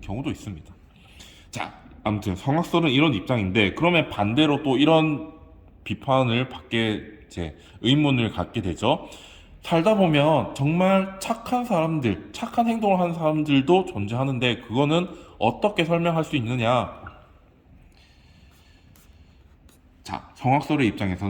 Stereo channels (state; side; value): identical; both; correlation 1.00